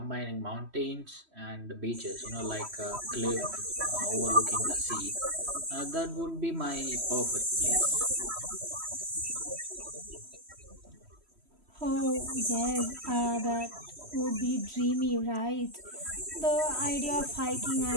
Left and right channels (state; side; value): late; left; 3.1 ms